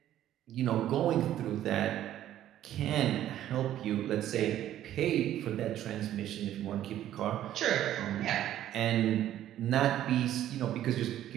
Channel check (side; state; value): left; quieter; 12.2 dB